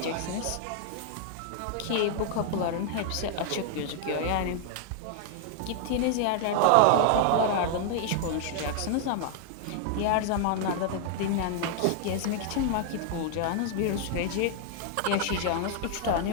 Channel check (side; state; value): both; different; correlation 0.00